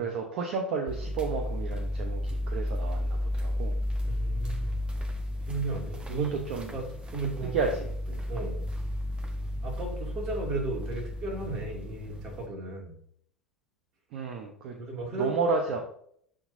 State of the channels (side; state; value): both; normal; correlation 0.46